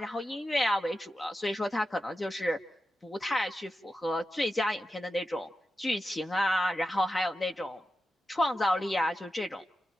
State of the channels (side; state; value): both; normal; correlation 0.91